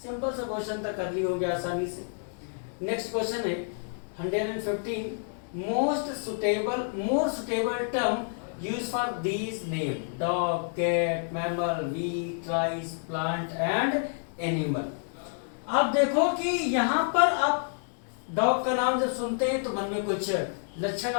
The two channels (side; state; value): right; silent; digital silence